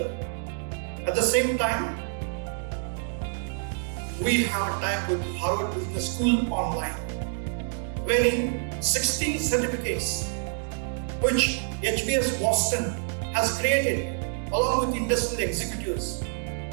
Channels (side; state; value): left; silent; digital silence